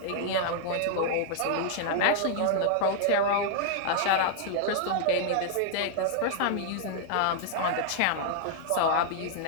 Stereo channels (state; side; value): different; both; correlation -0.01